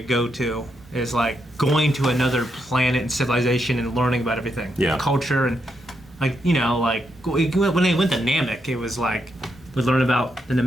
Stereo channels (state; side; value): normal; both; correlation 0.81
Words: go to is like going to another planet and civilization and learning about everything. Yeah. Culture and like, like when they went to Namek, it was like we learn about the